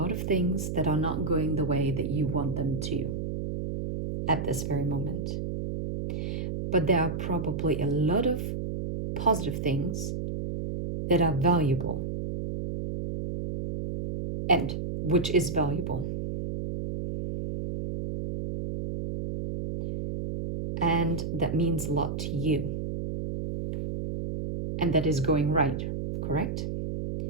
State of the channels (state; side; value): noise; right; hum, 4 dB below the sound